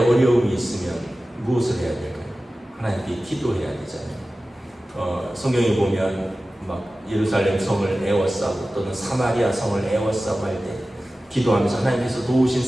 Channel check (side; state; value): both; normal; correlation 0.96